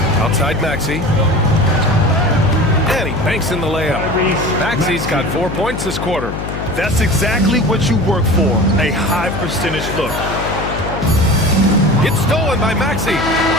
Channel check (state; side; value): noise; left; hum, 6 dB below the sound